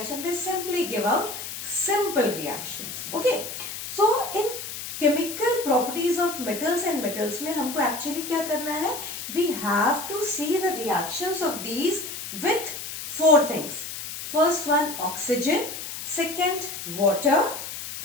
they simply give out simple reactions. Okay, so in chemical properties of metals and metals में हमको actually क्या करना है? We have to see the reactions of these with four things. First one, oxygen. Second, water.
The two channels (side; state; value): left; noise; hiss, 8 dB below the sound